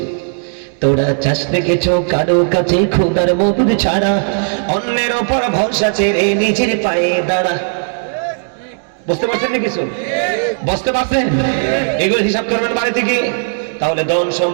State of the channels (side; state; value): left; silent; digital silence